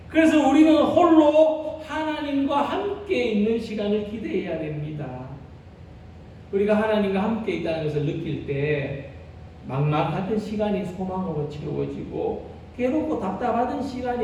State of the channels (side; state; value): both; identical; correlation 1.00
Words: 그래서 우리는 홀로 하나님과 함께 있는 시간을 기대해야 됩니다. 우리가 하나님과 함께 있다는 것을 느낄 때 막막하던 시간이 소망으로 채워지고 괴롭고 답답하던